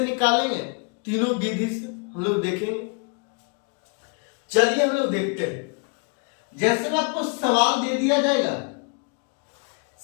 तीनों विधि से हम लोग देखेंगे। चलिए हम लोग देखते हैं। जैसे में आपको सवाल दे दिया जाएगा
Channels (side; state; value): right; quieter; 34.4 dB